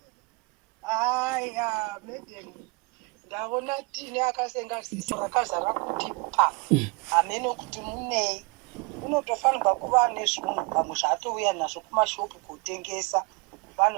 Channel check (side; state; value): left; quieter; 29.4 dB